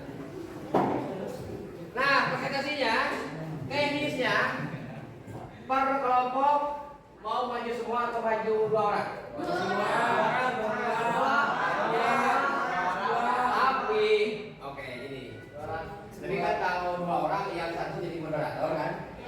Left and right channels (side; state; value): both; identical; correlation 1.00